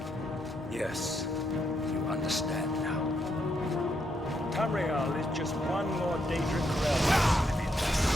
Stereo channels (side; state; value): both; normal; correlation 0.77